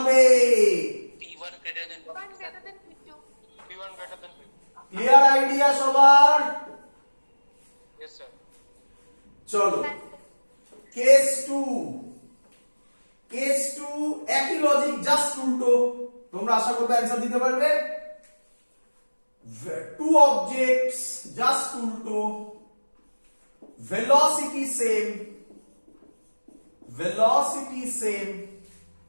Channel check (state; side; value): inverted; both; correlation -1.00